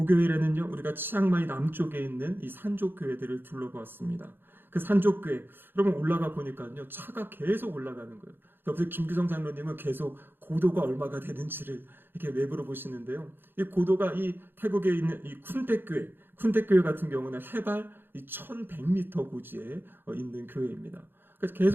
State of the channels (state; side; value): late; left; 0.10 ms